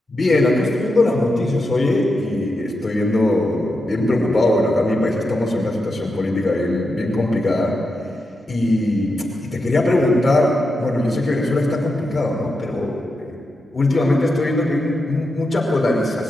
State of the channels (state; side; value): normal; both; correlation 0.87